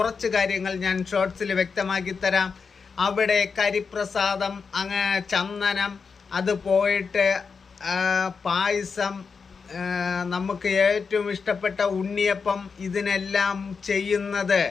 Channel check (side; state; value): right; quieter; 5.4 dB